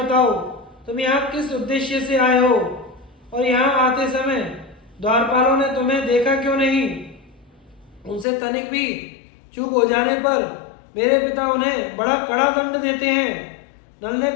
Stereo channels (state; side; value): drops out; right; at 8.2 s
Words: तुम यहाँ किस उद्देश्य से आए हो और यहाँ आते समय द्वारपालों ने तुम्हें देखा क्यों नहीं। उनसे तनिक भी चूक हो जाने पर मेरे पिता उन्हें बड़ा कड़ा दंड देते हैं। नल ने